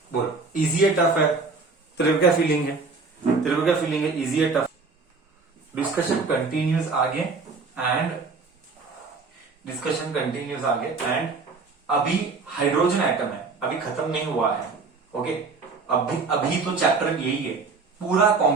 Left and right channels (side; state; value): left; quieter; 4.3 dB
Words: बोल, easy है tough है? तेरे को क्या फीलिंग है? इजी है टफ? डिस्कशन कंटिन्यूज आगे एंड अभी हाइड्रोजन एटम है, अभी खत्म नहीं हुआ है. ओके, अभी तो चैप्टर यही है, पूरा